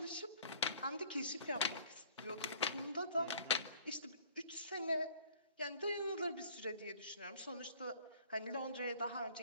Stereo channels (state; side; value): inverted; both; correlation -0.53